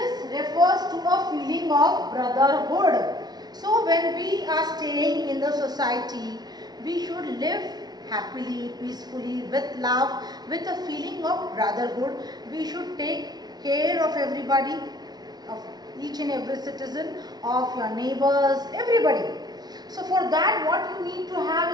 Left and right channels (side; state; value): left; late; 0.19 ms